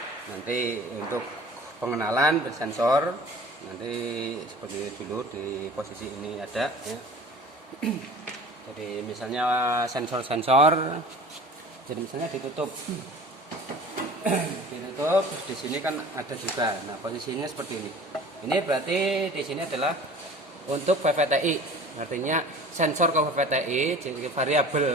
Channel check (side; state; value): both; normal; correlation 0.43